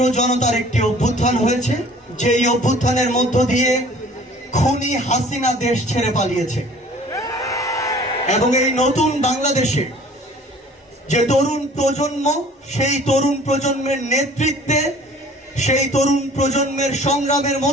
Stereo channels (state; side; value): normal; both; correlation 0.50